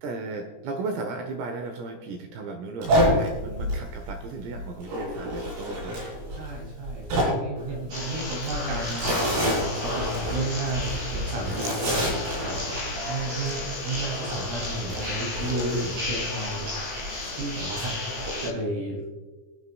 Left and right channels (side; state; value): left; late; 17 ms